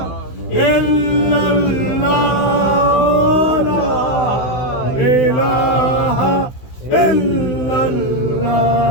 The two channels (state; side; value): late; right; 16 ms